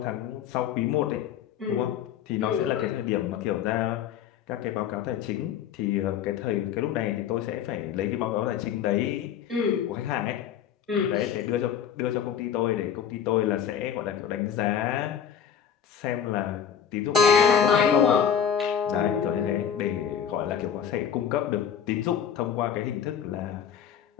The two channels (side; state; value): right; quieter; 8.5 dB